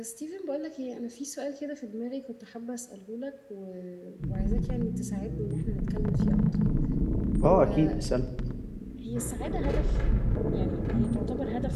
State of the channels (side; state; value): both; identical; correlation 1.00